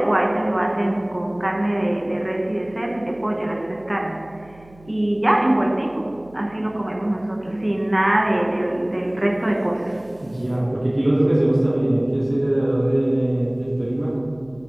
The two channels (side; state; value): right; noise; hum, 25 dB below the sound